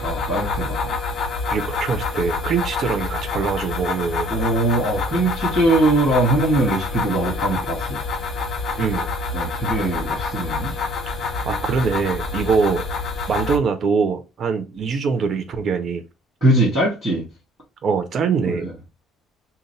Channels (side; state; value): both; normal; correlation 0.57